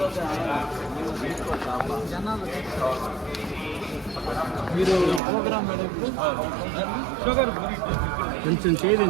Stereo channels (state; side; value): drops out; left; at 5.2 s